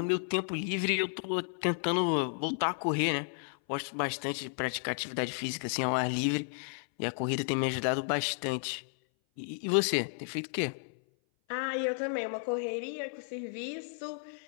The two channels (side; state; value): right; silent; 56 dB below the other